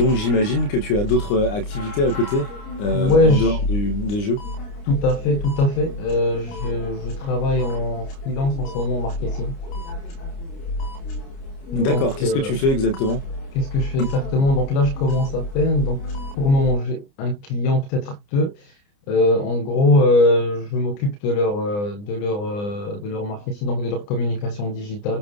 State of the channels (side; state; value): right; late; 29 ms